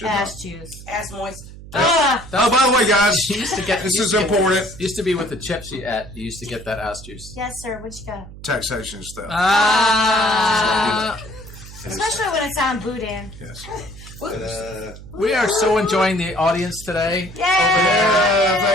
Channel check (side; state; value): right; noise; hum, 16 dB below the sound